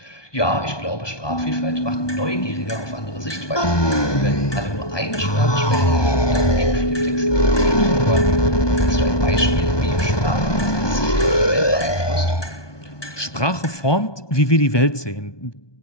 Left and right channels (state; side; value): late; right; 1.2 ms